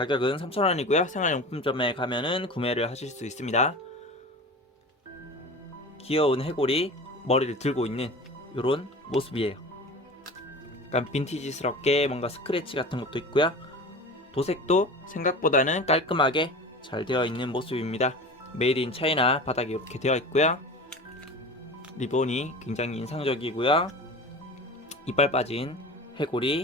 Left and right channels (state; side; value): normal; both; correlation 0.34